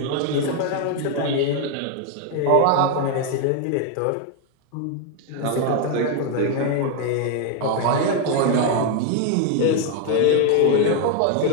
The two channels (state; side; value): different; both; correlation 0.01